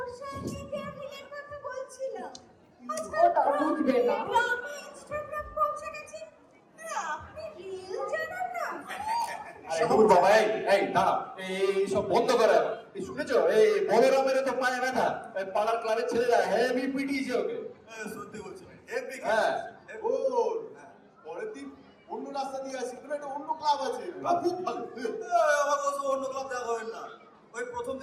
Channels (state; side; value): identical; both; correlation 1.00